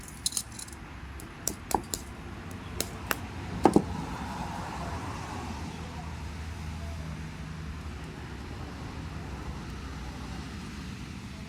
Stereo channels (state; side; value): identical; both; correlation 1.00